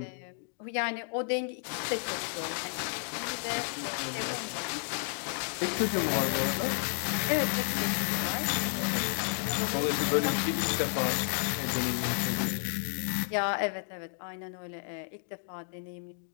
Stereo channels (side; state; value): right; silent; digital silence